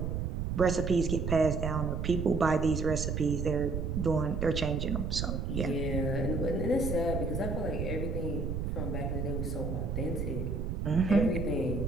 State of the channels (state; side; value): noise; right; rumble, 2 dB below the sound